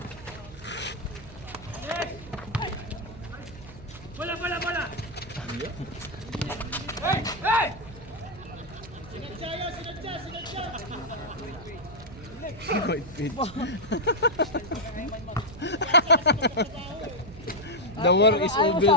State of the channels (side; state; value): right; noise; hum, 17 dB below the sound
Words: Bola! The war is Ayaw over.